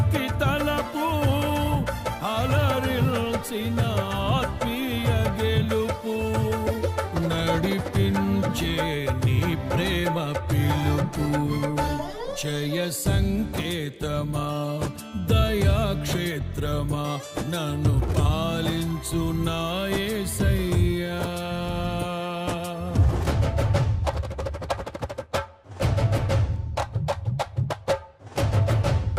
తలపు, అలరిల్చిన ఆత్మీయ గెలుపు. నడిపించే నీ ప్రేమ పిలుపు, జయ సంకేతమా దయాక్షేత్రమా నన్ను పాలించు నా యేసయ్యా.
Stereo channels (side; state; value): both; identical; correlation 1.00